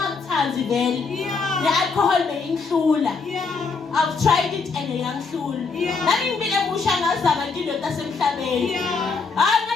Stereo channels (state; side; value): quieter; right; 4.6 dB